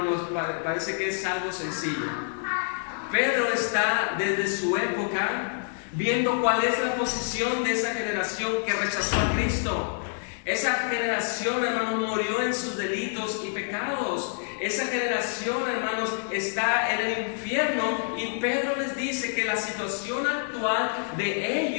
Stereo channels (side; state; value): right; silent; 60 dB below the other